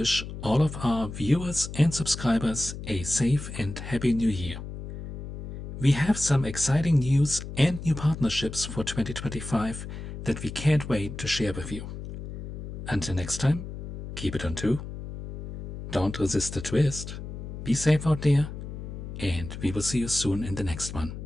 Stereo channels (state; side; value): noise; left; hum, 8 dB below the sound